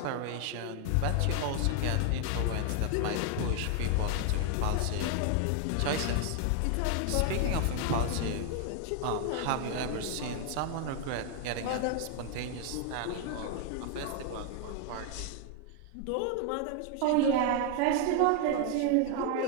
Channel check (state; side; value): different; both; correlation 0.00